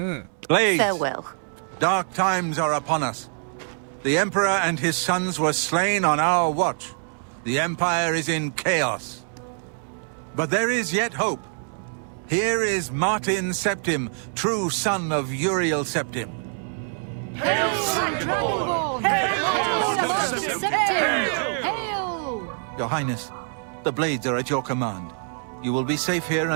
Blades! Farewell. Dark times are upon us. The Emperor and his sons were slain on our watch. The Empire is in chaos. But there is yet hope. Here is Martin Septim, true son of Uriel Septim. Hail, Dragonborn! Hail, Septim! Hail! Your Highness, the blades are at your command. You will be safe here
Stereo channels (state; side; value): silent; left; 57 dB below the other